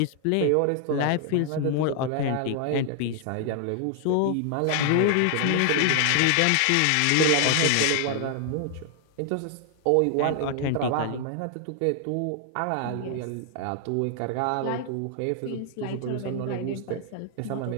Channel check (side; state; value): both; different; correlation 0.00